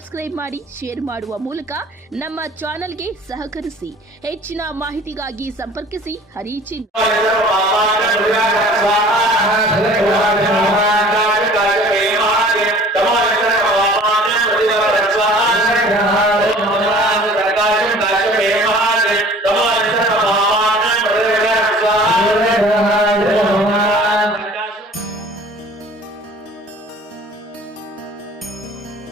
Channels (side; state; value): both; normal; correlation 0.48